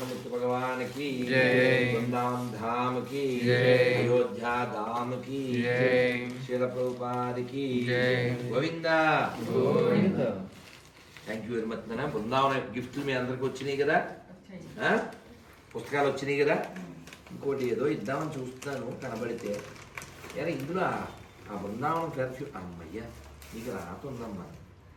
భగవాన్ కి వృందావన్ ధామ్ కి అయోధ్యా ధామ్ కి శీల ప్రభుపాద్ కి Govinda Govinda. Thank you very much. నాన్న బృందావన గిఫ్ట్లు మీ అందరికి వచ్చినాయి కదా, పుస్తకాలు వచ్చినాయి కదా. ఇంకోటి ఏదో ఇద్దామని చూస్తున్నాను కనబడితే. ఎలా ఇందులో ఆ బృందావనం పెర్ఫ్యూమ్ అమ్మయ్యా నీకు రాతుందమ్మా.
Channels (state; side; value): identical; both; correlation 1.00